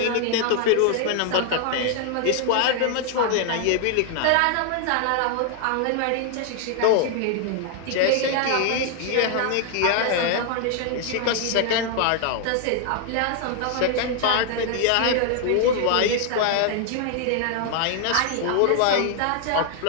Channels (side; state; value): both; different; correlation 0.00